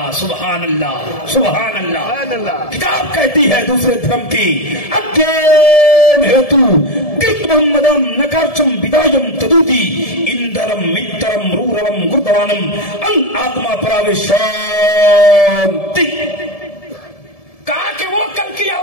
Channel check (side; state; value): right; late; 1.7 ms